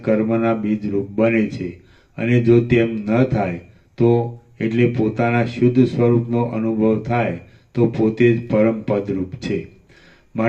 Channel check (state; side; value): identical; both; correlation 1.00